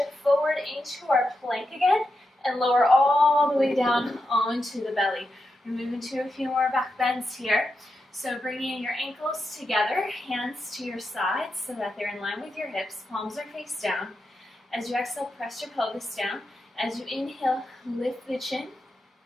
forward into our plank again and lower all the way down onto the belly. We're moving to a few more back bends here. So bringing your ankles together, hands to your sides so that they're in line with your hips, palms are face down. As you exhale, press your pelvis down. As you inhale, lift the chin,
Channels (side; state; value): both; normal; correlation 0.87